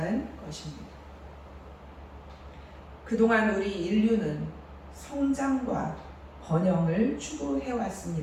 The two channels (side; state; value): both; identical; correlation 1.00